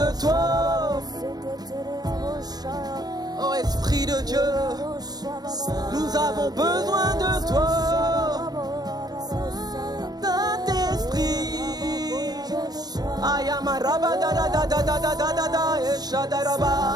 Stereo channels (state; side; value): late; left; 0.19 ms